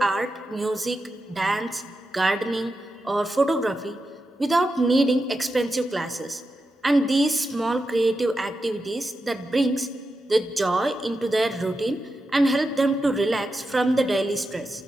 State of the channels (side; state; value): both; normal; correlation 0.89